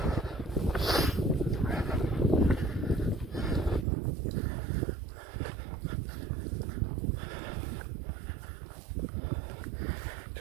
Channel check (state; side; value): drops out; left; at 3.9 s